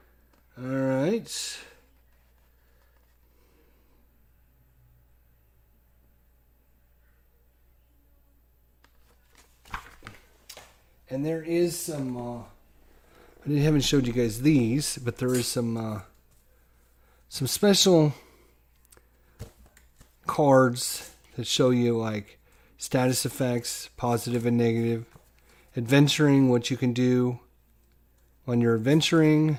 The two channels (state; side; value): identical; both; correlation 1.00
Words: All right. And there is some... I haven't showed you guys these, but there is some special cards that show you like status effects, positive and negative, adventuring, what you can do when you're adventuring,